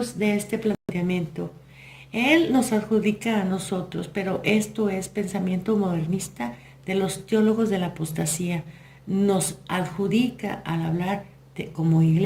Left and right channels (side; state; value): both; identical; correlation 1.00